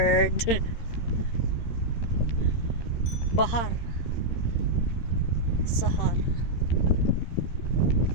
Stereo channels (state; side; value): late; right; 13 ms